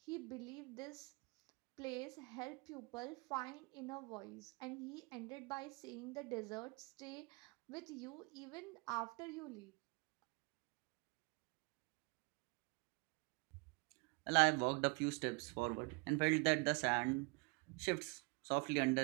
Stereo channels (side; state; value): left; quieter; 30.2 dB